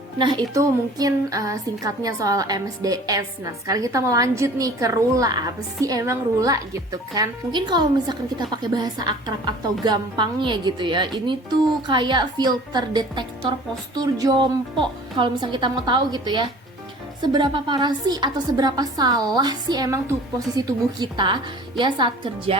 Nah, itu mungkin singkatnya soal MSDS. Nah, sekarang kita mau lanjut nih ke RULA. Apa sih emang RULA gitu kan? Mungkin kalau misalkan kita pakai bahasa akrab atau gampangnya gitu ya, ini tuh kayak filter detektor postur jompo. Kalau misalkan kita mau tahu gitu ya, seberapa parah sih atau seberapa salah sih emang tuh posisi tubuh kita ya saat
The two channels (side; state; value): both; normal; correlation 0.46